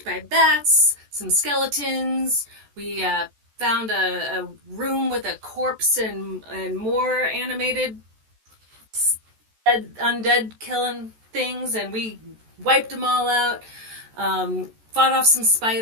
by bats, some skeletons. We found a room with a corpse and more animated undead killing things, and we wiped them all out. Fought off some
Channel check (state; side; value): late; left; 14 ms